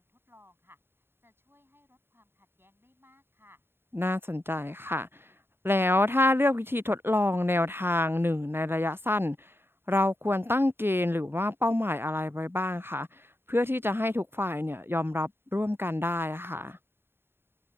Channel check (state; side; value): late; left; 0.11 ms